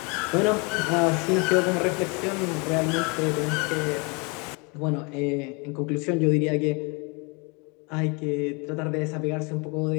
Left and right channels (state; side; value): quieter; right; 30.7 dB